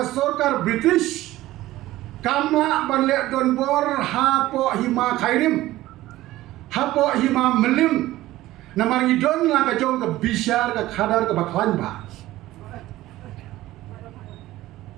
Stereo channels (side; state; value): left; quieter; 16.2 dB